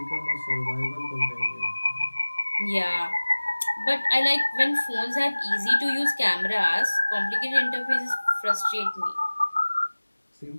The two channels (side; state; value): both; inverted; correlation -1.00